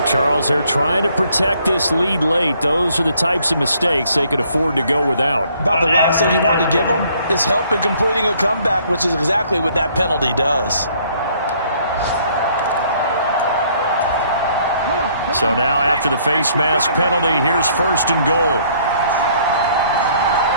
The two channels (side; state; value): both; inverted; correlation -0.63